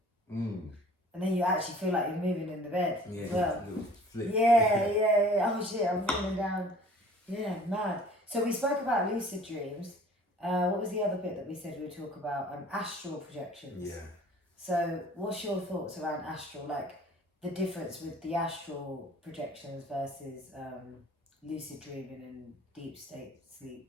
And then you actually feel like you're moving in the bed as well. Flip. Yeah. Oh shit, I'm falling down. Yeah, mad. So we spoke about lucid dreams. What was the other bit that we said we would talk about? Astral projections. Yeah. So what's your thoughts around astral? Like the difference with the astral projections versus lucid dreaming and deep state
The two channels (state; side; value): normal; both; correlation 0.50